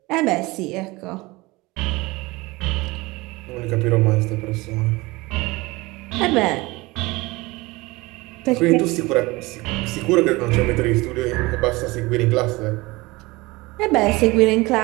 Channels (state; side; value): quieter; left; 22.2 dB